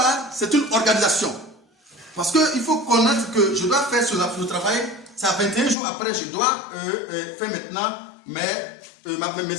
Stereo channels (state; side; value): drops out; right; at 5.8 s